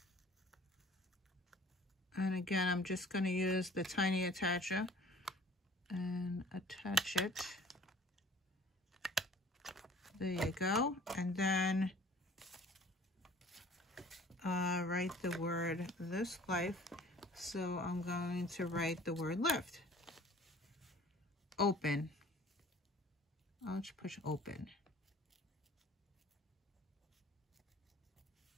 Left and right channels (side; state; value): both; normal; correlation 0.50